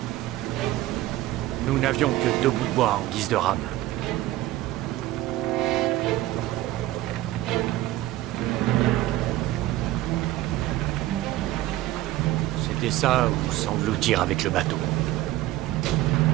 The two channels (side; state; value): left; quieter; 15.8 dB